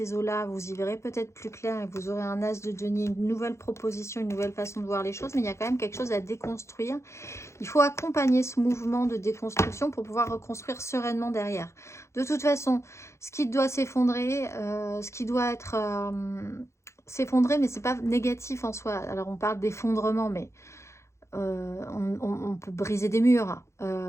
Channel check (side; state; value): right; late; 0.14 ms